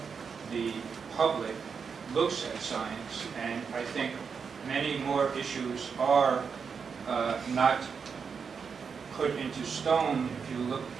the public looks at science, and I think many more issues are not put into stone if you look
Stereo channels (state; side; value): quieter; left; 6.0 dB